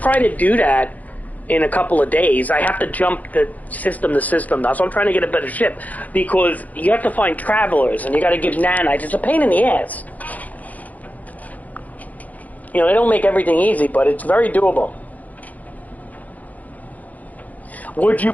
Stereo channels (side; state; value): right; late; 0.077 ms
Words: to do that in a couple of days. I have to jump the system to system now, so I'm trying to get a better ship, because you have to find travelers, and you gotta give nanites. It's a pain in the ass. You know, they don't make everything easy, but it's very doable. Would you